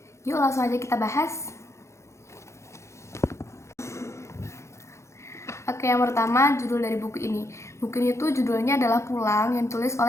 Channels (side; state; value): right; late; 0.14 ms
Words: Yuk langsung aja kita bahas. Oke, yang pertama judul dari buku ini. Buku ini tuh judulnya adalah Pulang yang ditulis